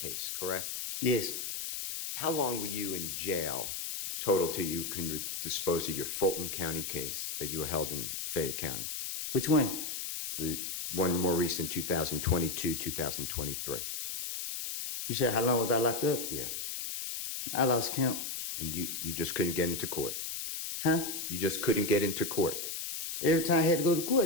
correct? Yes. How long were you in jail total till you can dispose of your Fulton County case that you were held in Fayette County? Which one? The one more recent, 2022, 2023. You said how long was I locked up? Yeah. I lost count. And you just couldn't get into court? Huh? You just couldn't get into court? Every time I had to go to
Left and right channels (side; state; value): left; noise; hiss, 4 dB below the sound